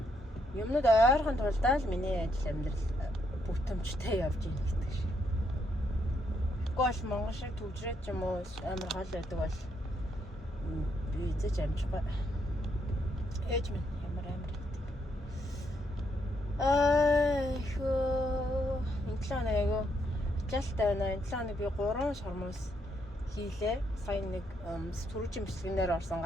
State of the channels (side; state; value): both; normal; correlation 0.76